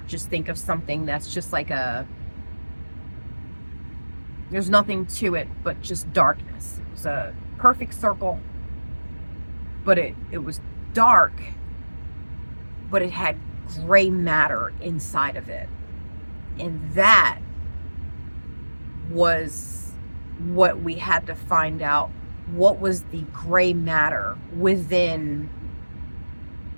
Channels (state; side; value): inverted; both; correlation -1.00